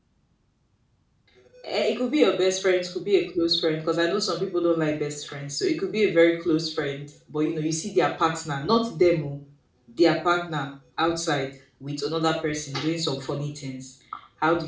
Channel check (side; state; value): both; identical; correlation 1.00